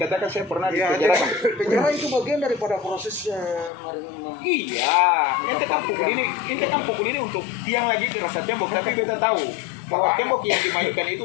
saya pernah di penjara. Penjara itu bagian daripada prosesnya. Iya, ente kan pukul ini untuk tiang lagi rasa tembok, tapi beta tahu bahwa tembok yang dimainkan itu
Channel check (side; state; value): right; drops out; at 3.7 s